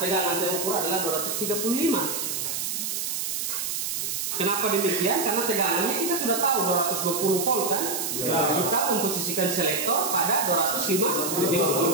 tegangan terukur adalah 235. Kenapa demikian? Karena tegangannya kita sudah tahu 220 volt kan? Kita memposisikan selektor pada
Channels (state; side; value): noise; right; hiss, 2 dB below the sound